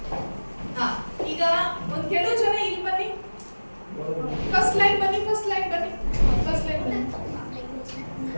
ಈಗ ಒಂದ್ ಕೆಲವು ಜನ ಇಲ್ಲಿ ಬನ್ನಿ, ಫಸ್ಟ್ ಲೈನ್ ಬನ್ನಿ.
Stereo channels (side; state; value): both; inverted; correlation -1.00